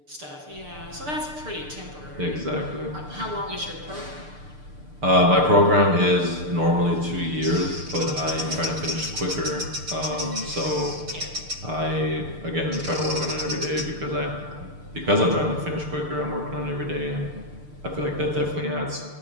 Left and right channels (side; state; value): left; late; 6.7 ms